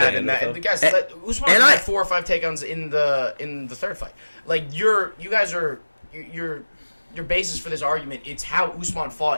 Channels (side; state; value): both; inverted; correlation -1.00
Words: in that. The guys, Usman had 4 or 5 takedowns in the third fight. Your basis for this argument, it's how Usman